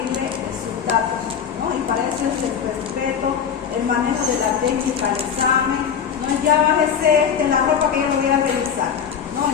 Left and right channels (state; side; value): quieter; right; 7.6 dB